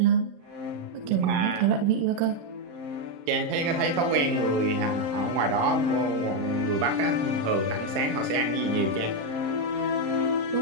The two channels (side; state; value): left; late; 35 ms